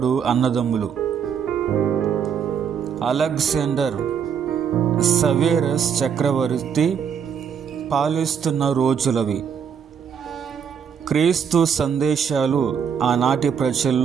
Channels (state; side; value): quieter; left; 7.4 dB